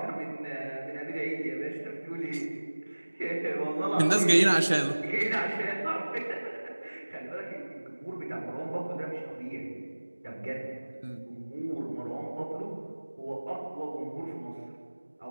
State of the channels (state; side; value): inverted; both; correlation -1.00